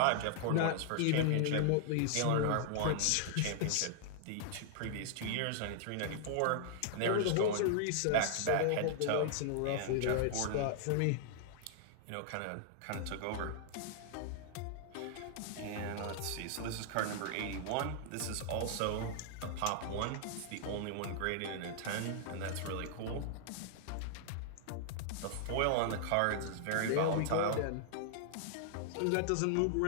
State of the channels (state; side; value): different; both; correlation -0.01